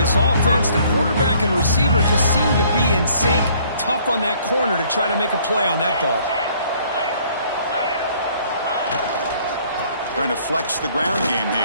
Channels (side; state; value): both; inverted; correlation -0.60